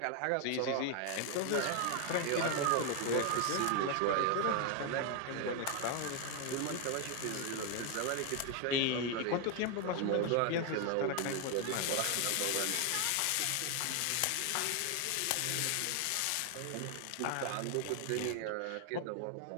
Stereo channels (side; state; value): both; different; correlation 0.00